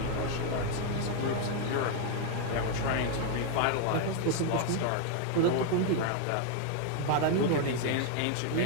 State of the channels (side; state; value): both; different; correlation 0.01